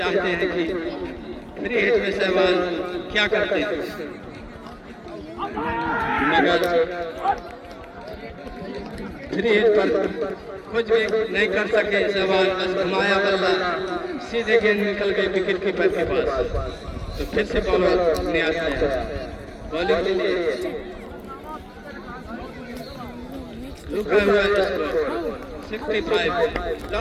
हैं कि फ्री हिट में सहवाल क्या करते हैं, मगर फ्री हिट पर कुछ भी नहीं कर सके सहवाल। बस घुमाया बल्ला सीधे गेंद निकल गई विकेट कीपर के पास। तो फिर से बॉलर न्याज है बॉलिंग के लिए रुका हुआ स्कोर 65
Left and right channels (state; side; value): identical; both; correlation 1.00